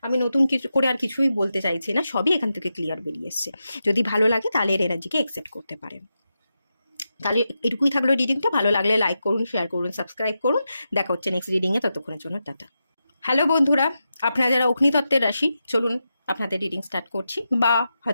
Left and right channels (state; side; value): inverted; both; correlation -0.88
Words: আমি নতুন কিছু করে আর কিছুই বলতে চাইছি না, সবই এখান থেকে ক্লিয়ার বেরিয়ে এসছে। যদি ভালো লাগে তাহলে এর এনার্জিকে অ্যাকসেপ্ট করতে পারেন। তাহলে এটুকুই থাকলো রিডিংটা। ভালো লাগলে লাইক করুন, শেয়ার করুন, সাবস্ক্রাইব করুন। দেখা হচ্ছে নেক্সট রিডিংয়ে, ততক্ষণের জন্য টাটা। হ্যালো বন্ধুরা, আপনারা যারা অগ্নিতত্ত্বের রাশি, চলুন আপনাদের রিডিং স্টার্ট করছি, বা